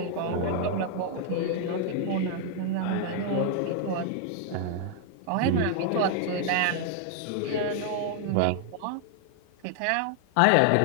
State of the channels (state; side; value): different; both; correlation 0.00